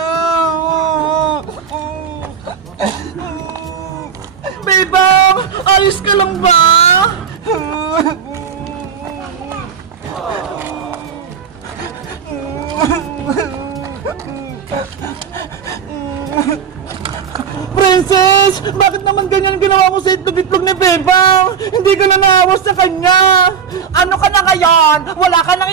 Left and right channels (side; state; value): left; quieter; 7.1 dB